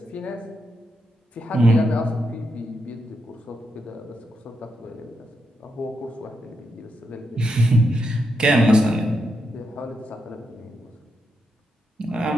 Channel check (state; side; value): normal; both; correlation 0.83